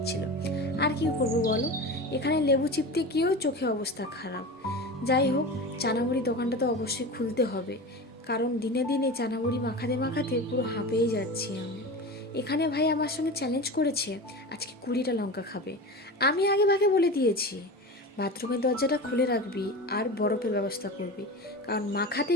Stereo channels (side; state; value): both; normal; correlation 0.29